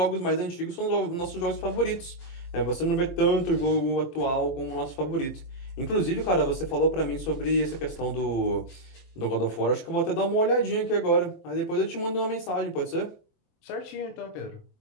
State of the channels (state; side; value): late; right; 23 ms